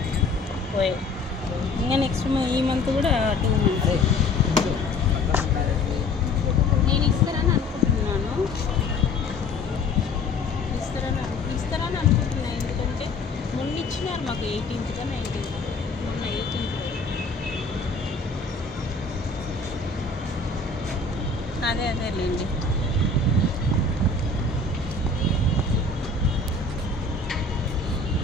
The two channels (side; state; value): right; quieter; 3.6 dB